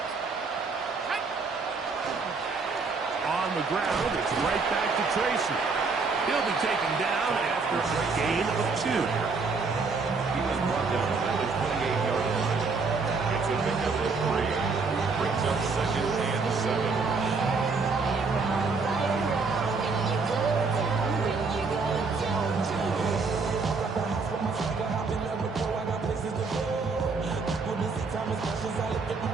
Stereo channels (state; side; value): quieter; left; 4.4 dB